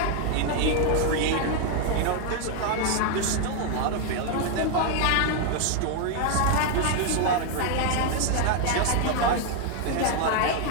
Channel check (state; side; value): different; both; correlation 0.00